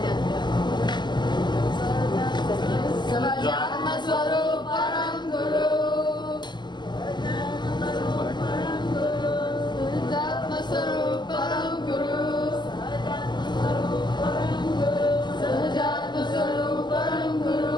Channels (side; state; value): right; late; 0.21 ms